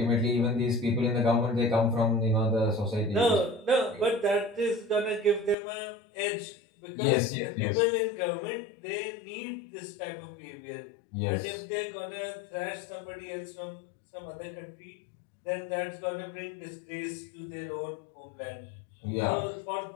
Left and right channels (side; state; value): right; drops out; at 5.6 s